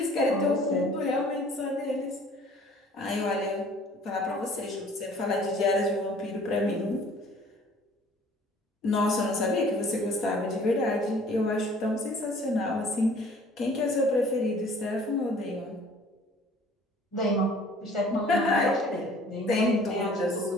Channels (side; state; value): both; normal; correlation 0.53